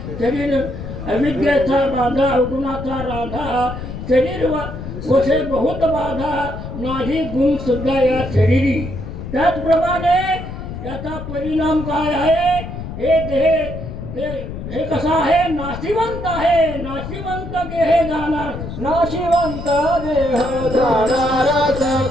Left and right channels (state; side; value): noise; left; rumble, 9 dB below the sound